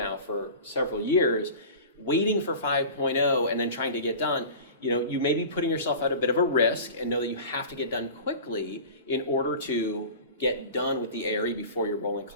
for several years, waiting for 5.0 and then trying to get done, you may be putting yourself at a bit of a risk and know that you have to get done quickly in order to get done with the ARE before your rolling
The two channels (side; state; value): both; inverted; correlation -0.36